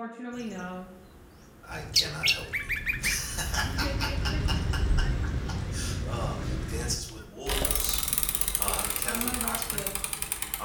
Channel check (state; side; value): identical; both; correlation 1.00